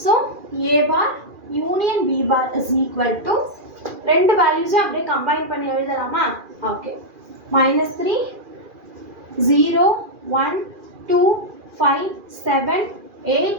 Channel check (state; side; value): late; left; 2.4 ms